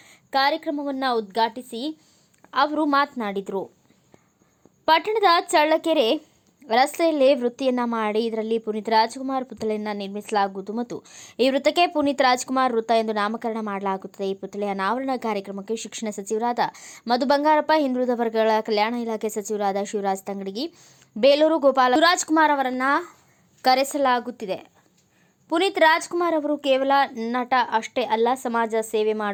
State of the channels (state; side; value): identical; both; correlation 1.00